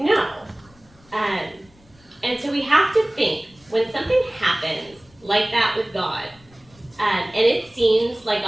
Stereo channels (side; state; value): left; noise; rumble, 29 dB below the sound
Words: And so we have to think when something happens like that with God, and it seems like